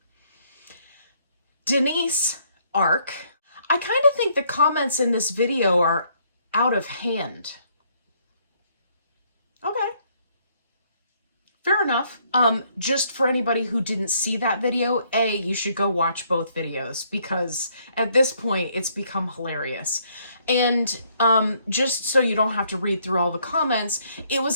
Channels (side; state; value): both; inverted; correlation -0.68